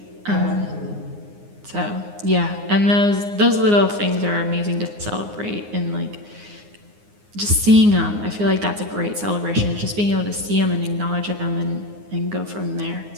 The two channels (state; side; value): late; left; 9.7 ms